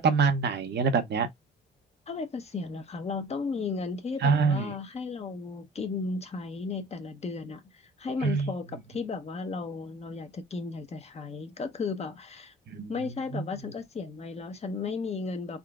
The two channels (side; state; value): both; normal; correlation 0.44